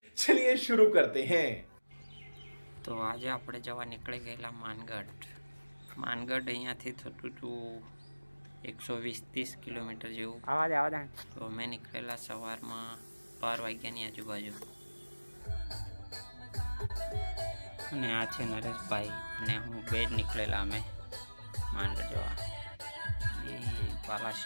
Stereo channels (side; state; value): both; inverted; correlation -1.00